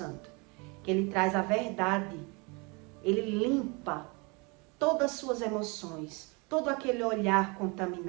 que ele traz a verdade, ele limpa todas as suas emoções, todo aquele olhar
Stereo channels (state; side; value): quieter; left; 29.6 dB